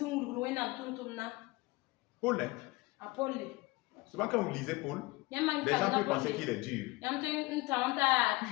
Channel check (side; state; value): right; quieter; 22.5 dB